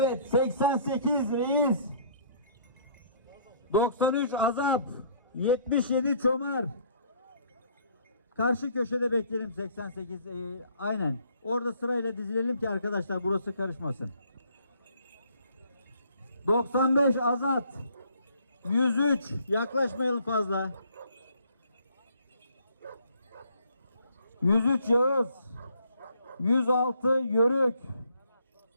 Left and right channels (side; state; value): both; inverted; correlation -0.61